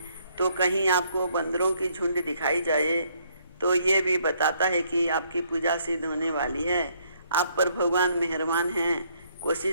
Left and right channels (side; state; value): both; inverted; correlation -0.68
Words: तो कहीं आपको बंदरों की झुंड दिखाई जाए तो ये भी बताता है कि आपकी पूजा सिद्ध होने वाली है। आप पर भगवान मेहरबान हैं।